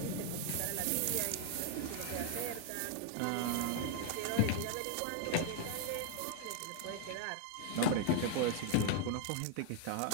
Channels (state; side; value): different; both; correlation 0.00